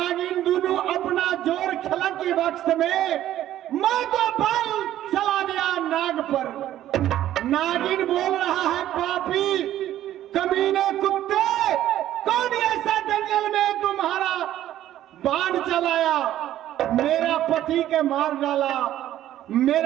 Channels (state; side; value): quieter; left; 12.7 dB